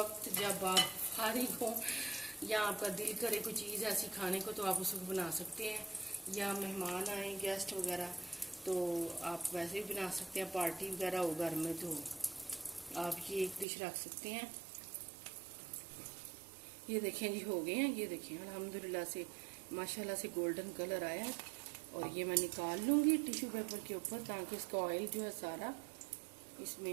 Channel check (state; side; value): drops out; left; at 13.7 s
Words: जब आप फारिग हो या आपका दिल करे कोई चीज़ ऐसी खाने को, तो आप उसको बना सकते हैं। या मेहमान आए, गेस्ट वगैरह, तो आप वैसे भी बना सकते हैं। पार्टी वगैरह हो घर में तो आप ये एक डिश रख सकते हैं। ये देखें जी, हो गए हैं। ये देखें, अल्हम्दुलिल्लाह से माशाल्लाह से गोल्डन कलर आया है। और ये मैं निकाल लूँगी टिश्यू पेपर के ऊपर, ताकि इसका ऑयल जो है सारा